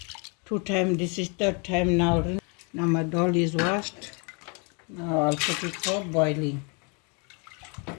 2 times. This is 3rd time now. Now my doll is washed. Now I'll put it for boiling.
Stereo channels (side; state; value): right; quieter; 34.2 dB